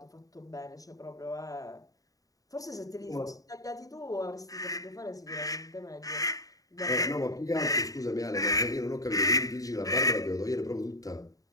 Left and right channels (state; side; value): late; right; 0.17 ms